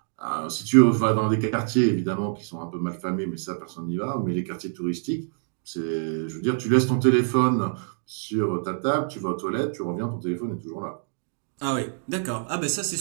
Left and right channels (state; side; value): silent; left; digital silence